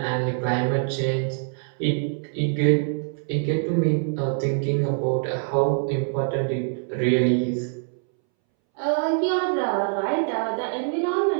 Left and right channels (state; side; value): silent; left; 62 dB below the other